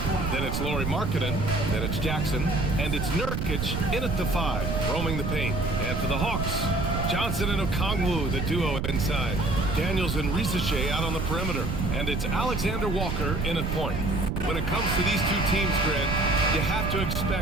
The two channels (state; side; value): noise; right; rumble, 2 dB below the sound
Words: Then it's Lauri Markkanen. Then it's Jackson. And it's Nurkic in at the 5, roaming the paint. And for the Hawks, Johnson and Okongwu, the duo inside. Daniels and Risache out on the perimeter. And it's Alexander Walker in at point. When it comes to these two teams, Grant, you have to